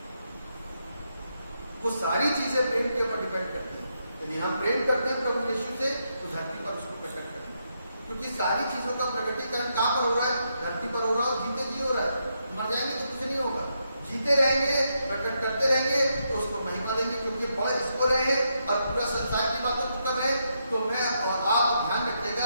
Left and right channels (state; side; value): inverted; both; correlation -0.81